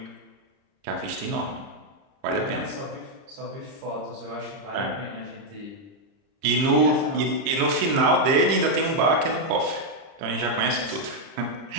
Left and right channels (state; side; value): late; left; 30 ms